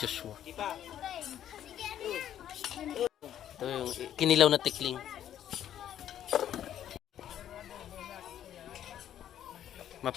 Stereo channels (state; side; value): quieter; right; 10.8 dB